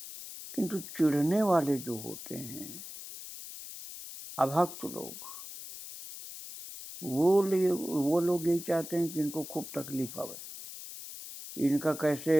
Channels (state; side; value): noise; left; hiss, 12 dB below the sound